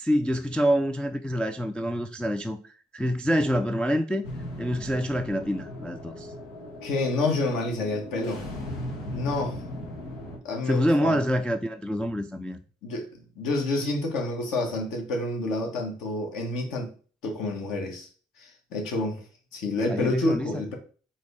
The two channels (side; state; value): both; normal; correlation 0.76